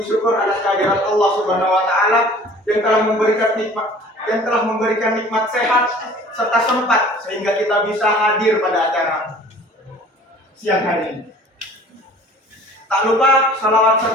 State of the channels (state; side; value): normal; both; correlation 0.48